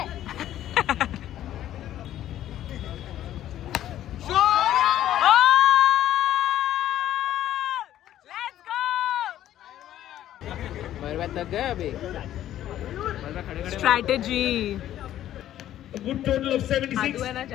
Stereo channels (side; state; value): right; quieter; 12.3 dB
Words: तक गए अभी. स्ट्रैटेजी. Good total of 76. आदू है ना